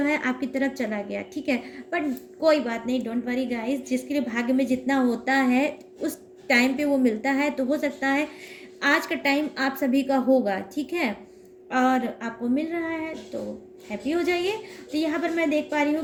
है आपकी तरफ चला गया। ठीक है, बट कोई बात नहीं, डोंट वरी गाइस, जिसके लिए भाग्य में जितना होता है उस टाइम पे वो मिलता है। तो हो सकता है आज का टाइम आप सभी का होगा। ठीक है, और आपको मिल रहा है तो हैप्पी हो जाइए। तो यहाँ पर मैं देख पा रही हूँ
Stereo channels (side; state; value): both; identical; correlation 1.00